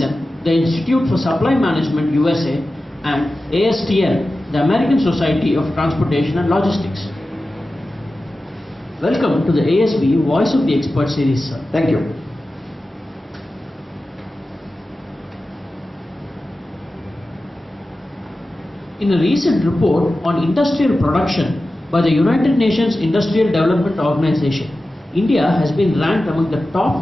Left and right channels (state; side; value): normal; both; correlation 0.94